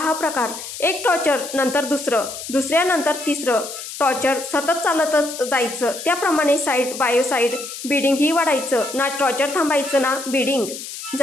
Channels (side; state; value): left; noise; hiss, 10 dB below the sound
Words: प्रकार। एक टॉर्चर नंतर दुसरं, दुसऱ्यानंतर तिसरं टॉर्चर सतत चालतच जायचं। त्याप्रमाणे साईड बायो साईड बिडिंग ही वाढायचं, ना टॉर्चर थांबायचं ना बिडिंग।